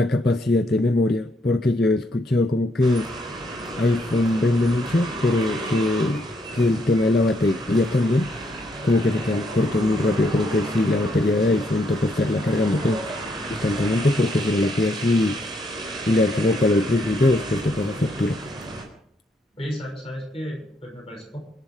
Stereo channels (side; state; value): both; normal; correlation 0.74